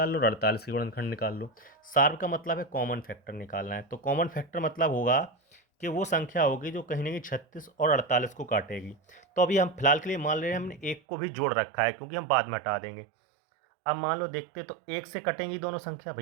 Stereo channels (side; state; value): left; drops out; at 11.0 s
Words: लो और 48 के गुणनखंड निकाल लो। सार का मतलब है कॉमन फैक्टर निकालना है, तो कॉमन फैक्टर मतलब होगा कि वो संख्या होगी जो कहीं ना कहीं 36 और 48 को काटेगी। तो अभी हम फिलहाल के लिए मान ले रहे हैं हमने एक को भी जोड़ रखा है, क्योंकि हम बाद में हटा देंगे। अब मान लो देखते तो 1 से कटेंगी दोनों संख्या,